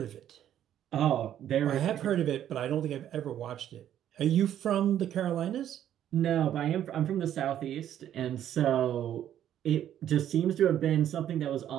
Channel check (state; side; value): quieter; left; 10.9 dB